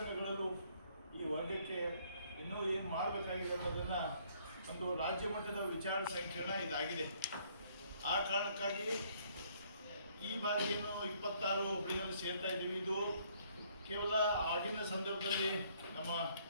ಈ ವರ್ಗಕ್ಕೆ ಇನ್ನೂ ಏನು ಮಾಡಬೇಕಾಗಿದೆ ಅನ್ನೋದನ್ನು ಒಂದು ರಾಜ್ಯ ಮಟ್ಟದ ವಿಚಾರ ಸಂಕಿರಣ ಇದಾಗಿದೆ. ಆ ಕಾರಣಕ್ಕಾಗಿ ಈ ಬಾರಿ ಏನು 26 ಹುಬ್ಳಿನಲ್ಲಿ ಸೇರ್ತಾ ಇದ್ದೀವಿ. ಇದು ಕೇವಲ ಆಗಿನ ಸಂದರ್ಭದಲ್ಲಿ ನಮ್ಮ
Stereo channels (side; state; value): both; inverted; correlation -0.65